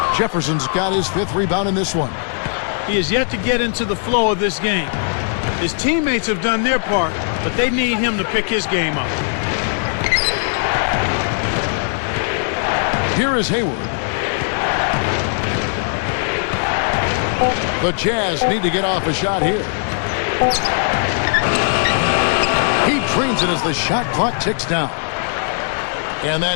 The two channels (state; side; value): silent; right; 67 dB below the other